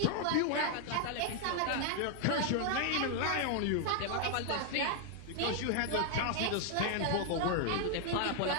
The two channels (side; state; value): both; different; correlation 0.00